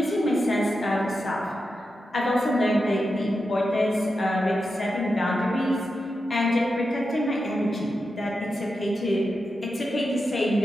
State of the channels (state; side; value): normal; both; correlation 0.89